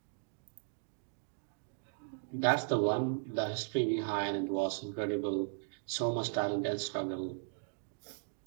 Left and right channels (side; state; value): left; silent; digital silence